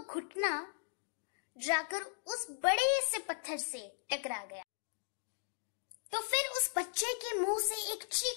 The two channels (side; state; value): right; silent; digital silence